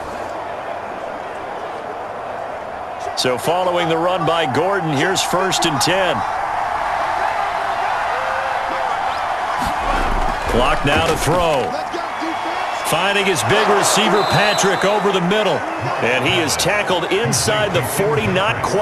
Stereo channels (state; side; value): identical; both; correlation 1.00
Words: So following the run by Gordon, here's 1st and 10. Clock now to throw. Finding his big receiver, Patrick, over the middle. And he is tackled inside the 40, not